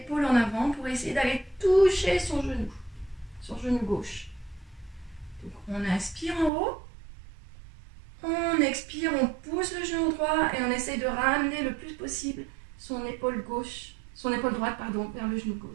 en avant pour essayer d'aller toucher son genou gauche. Donc on inspire en haut, on expire, on pousse le genou droit et on essaye de ramener le plus possible son épaule droite vers le genou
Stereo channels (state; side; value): drops out; left; at 6.5 s